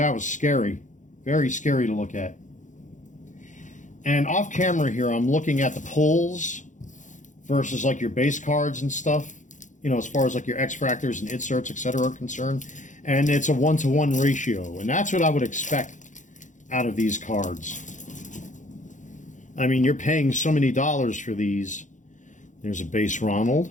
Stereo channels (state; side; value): late; right; 0.36 ms